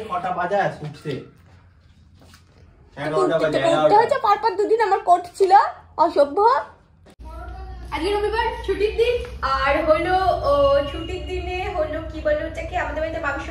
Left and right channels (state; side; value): identical; both; correlation 1.00